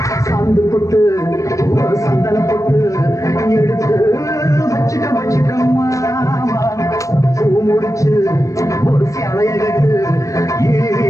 சாந்து போட்டு ஒரு சந்தன போட்டு எடுத்து வச்சுக்கம்மா பூ முடிச்சு ஒரு சேலைய கட்டு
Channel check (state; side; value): late; right; 0.16 ms